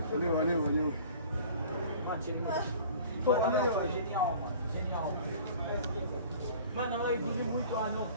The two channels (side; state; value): both; inverted; correlation -0.46